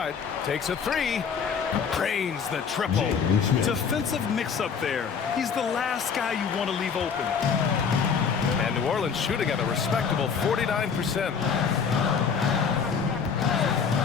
Takes a 3. Drains the triple. Defensive mix-up there. He's the last guy you want to leave open. And New Orleans shooting at a respectable 49%.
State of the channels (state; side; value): quieter; right; 6.3 dB